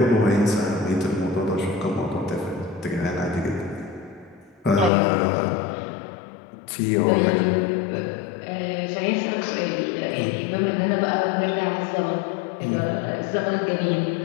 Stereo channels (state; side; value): drops out; right; at 4.9 s